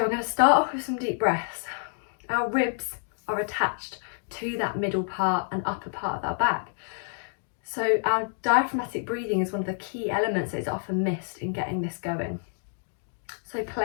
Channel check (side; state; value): right; silent; digital silence